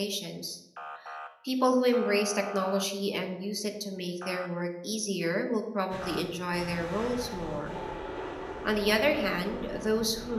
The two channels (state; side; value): identical; both; correlation 1.00